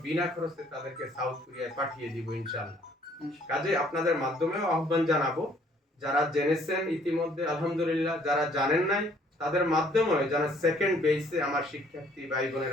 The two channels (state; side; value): normal; both; correlation 0.61